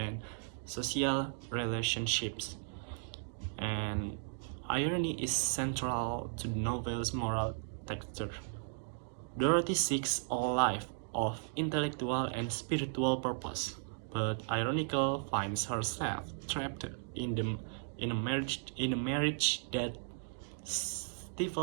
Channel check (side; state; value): left; silent; digital silence